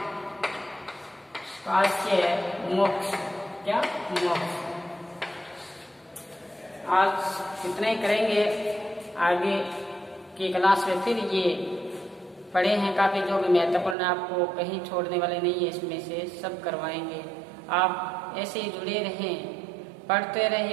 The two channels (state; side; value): drops out; left; at 14.0 s